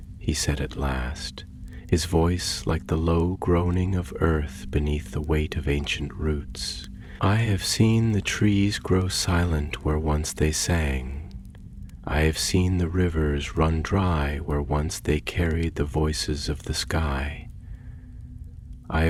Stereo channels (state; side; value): identical; both; correlation 1.00